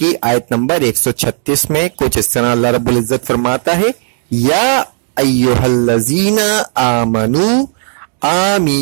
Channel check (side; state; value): left; silent; digital silence